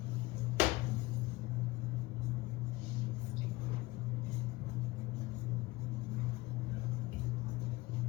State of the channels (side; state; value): right; quieter; 20.4 dB